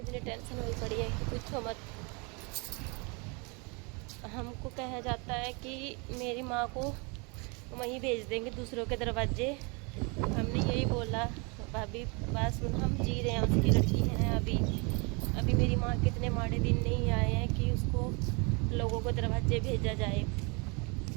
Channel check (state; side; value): quieter; left; 31.2 dB